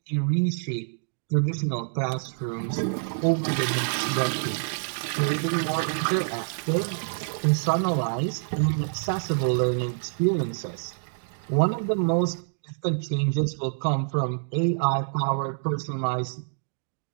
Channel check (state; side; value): silent; left; digital silence